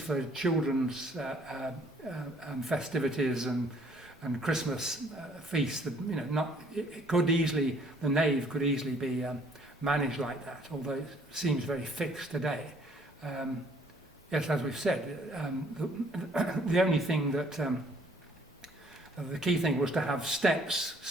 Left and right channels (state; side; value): normal; both; correlation 0.61